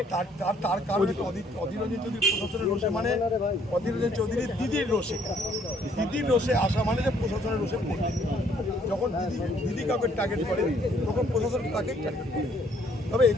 তার কারণে অধীর রঞ্জন চৌধুরী প্রশাসনের রোষে, মানে অধীর রঞ্জন চৌধুরীর দিদির রোষে আসা মানে যে প্রশাসনের রোষে পড়বে। যখন দিদি কাউকে টার্গেট করে তখন প্রশাসন তাকেই টার্গেট করে। তবে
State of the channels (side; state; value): both; normal; correlation 0.64